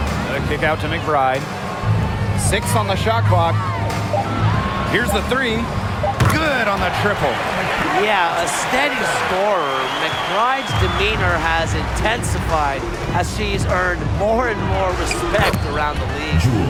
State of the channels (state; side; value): identical; both; correlation 1.00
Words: The kick out to McBride. 6 on the shot clock. Here's the 3. Good on the triple. Yeah, a steady scorer. McBride's demeanor has intensified as she's earned more and more respect around the league.